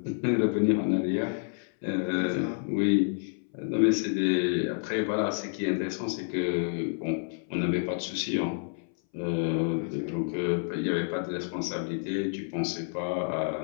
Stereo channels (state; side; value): silent; right; 59 dB below the other